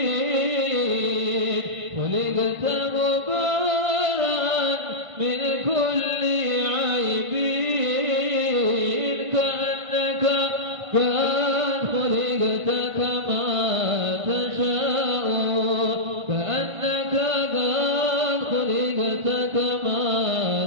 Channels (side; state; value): left; late; 1.5 ms